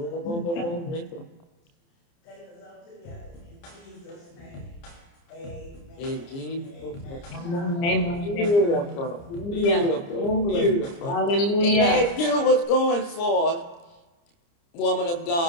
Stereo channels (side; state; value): right; late; 29 ms